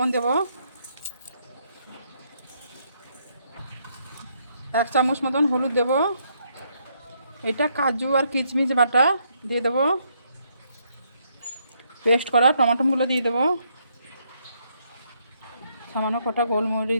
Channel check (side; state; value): both; inverted; correlation -0.74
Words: দেবো, 1 চামচ মতন হলুদ দেবো। এটা কাজু আর কিশমিশ বাটা দিয়ে দেবো। পেস্ট করা টমাটোগুলো দিয়ে দেবো। সামান্য কটা গোলমরিচ